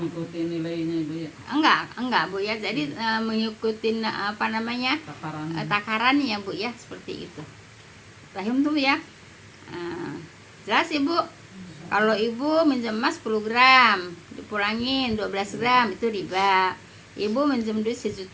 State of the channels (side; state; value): both; identical; correlation 1.00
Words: nilainya Ibu ya. Enggak Bu ya. Jadi mengikuti apa namanya? Takarannya Bu ya, seperti itu. Paham tuh Bu ya? Jelas Ibu? Kalau Ibu minjem emas 10 gram, dipulangin 12 gram, itu riba. Ibu minjem duit 1